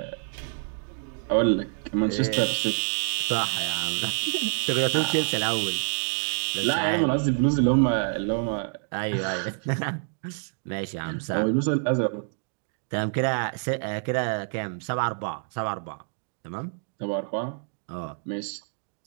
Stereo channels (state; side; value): silent; left; 58 dB below the other